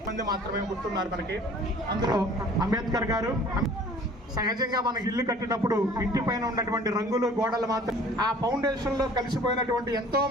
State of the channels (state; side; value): normal; both; correlation 0.50